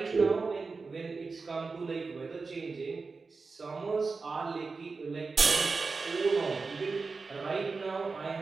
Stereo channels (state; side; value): quieter; left; 4.3 dB